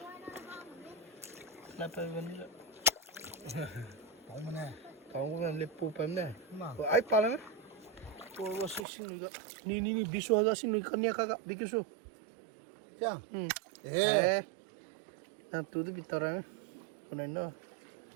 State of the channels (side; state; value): left; drops out; at 8.8 s